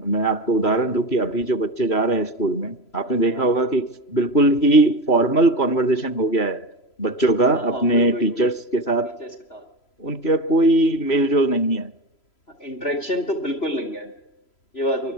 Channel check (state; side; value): late; right; 3.0 ms